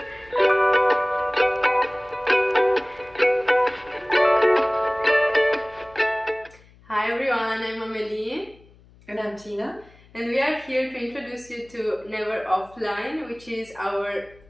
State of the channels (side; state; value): left; noise; hum, 27 dB below the sound